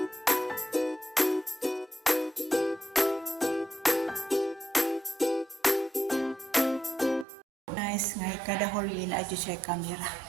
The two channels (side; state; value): left; drops out; at 7.2 s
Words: Nice nga kada hallway na adyo siya camera.